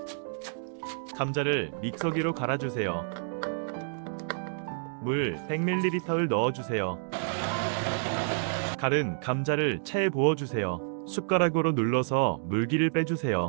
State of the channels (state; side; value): silent; left; digital silence